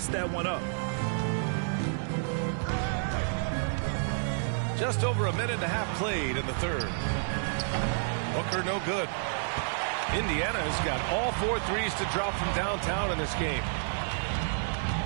that one up. Just over a minute and a half played in the third. Booker no good. Indiana's got all 4 threes to drop from downtown in this game.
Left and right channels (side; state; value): left; silent; digital silence